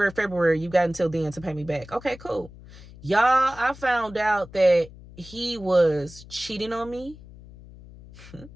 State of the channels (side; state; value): left; noise; hum, 19 dB below the sound